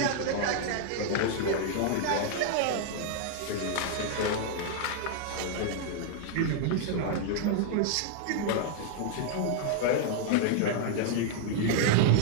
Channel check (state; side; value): different; both; correlation -0.01